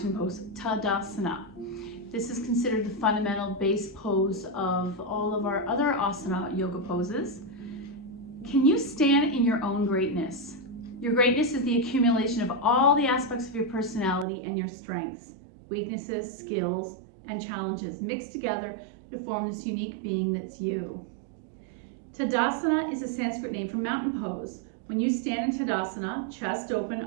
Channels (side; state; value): left; drops out; at 14.2 s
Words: pose, Tadasana. This is considered the fundamental base pose of all of our other asana yoga poses. Can you stand in your own greatness? Your greatness is the accumulation of all the aspects of your personality and your strengths, weaknesses, skills, and challenges mixed together to form this unique being that's you. Tadasana is a Sanskrit name for mountain pose. When you stand in Tadasana, chest open,